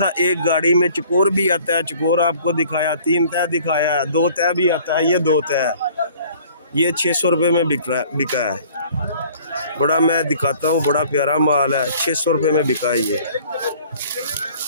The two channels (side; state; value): both; inverted; correlation -0.53